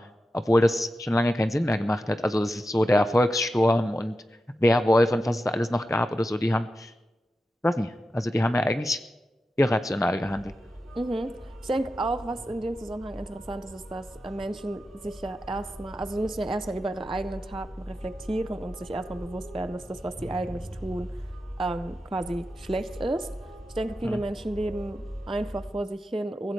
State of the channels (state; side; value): normal; both; correlation 0.90